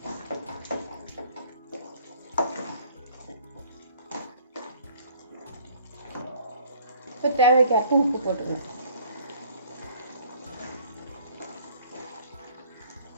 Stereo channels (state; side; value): inverted; both; correlation -0.56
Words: இப்போ தேவைக்கேற்ப உப்பு போட்டுக்கலாம்.